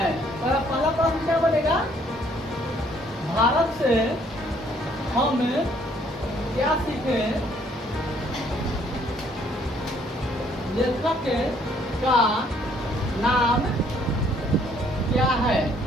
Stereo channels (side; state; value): both; normal; correlation 0.64